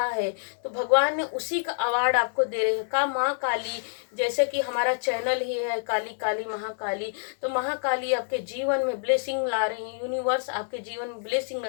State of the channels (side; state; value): right; silent; 60 dB below the other